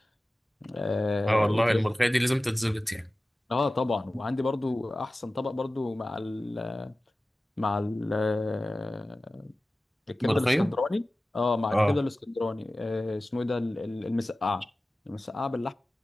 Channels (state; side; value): normal; both; correlation 0.96